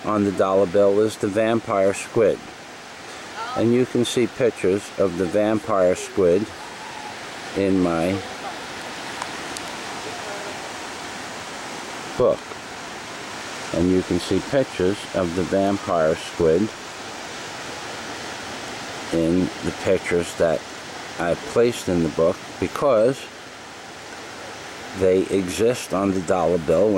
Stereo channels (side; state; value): both; identical; correlation 1.00